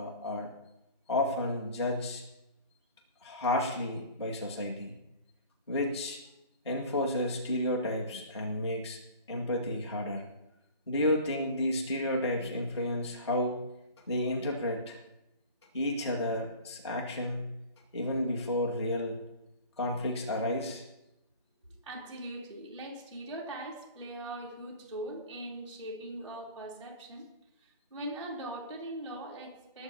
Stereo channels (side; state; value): both; inverted; correlation -0.43